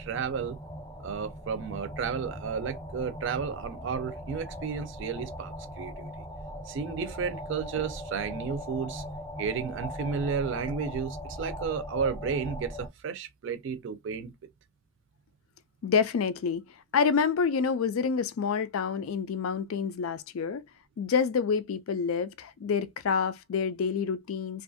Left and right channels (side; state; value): both; normal; correlation -0.08